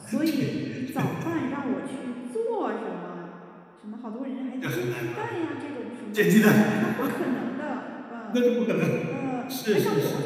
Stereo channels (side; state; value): both; identical; correlation 1.00